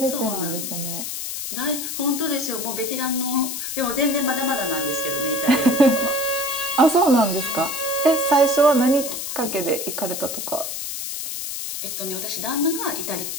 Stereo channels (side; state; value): left; noise; hiss, 5 dB below the sound